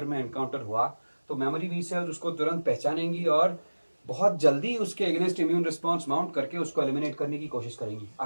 में encounter हुआ तो मेमोरी बी सेल्स उसको तुरंत पहचानेंगी और बहुत जल्दी उसके अगेंस्ट इम्यून रिस्पॉन्स माउंट करके उसको एलिमिनेट करने की कोशिश करेंगी,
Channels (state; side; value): inverted; both; correlation -1.00